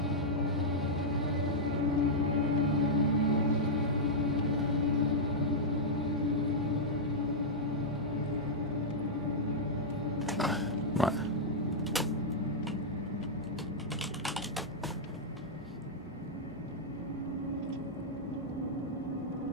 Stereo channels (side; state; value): both; normal; correlation -0.07